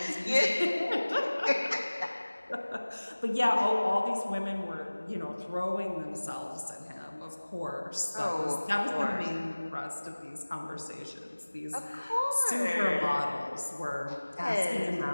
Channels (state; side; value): inverted; both; correlation -1.00